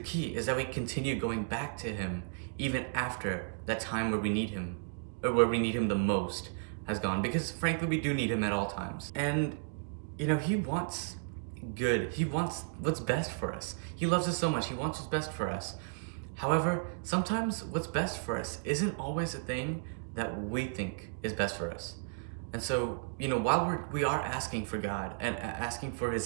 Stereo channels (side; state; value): left; silent; digital silence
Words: key is that we continue going back to him even after that time where we need him, or where we need him the most has gone, because frankly we do need him at all times. And he wants good. He wants what's best for us. He loves us so much. He wants what's best for us. However, sometimes what's best for us isn't always the thing that we think is best for us. And so, while we are asking for God and asking for